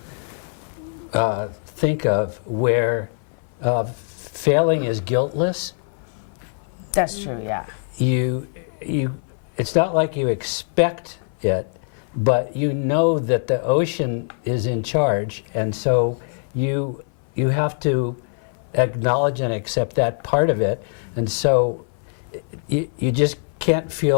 think of where failing is guiltless. That's true. Yeah. It's not like you expect it, but you know that the ocean is in charge, and so you have to acknowledge and accept that part of it, and so you just can't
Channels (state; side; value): silent; right; 57 dB below the other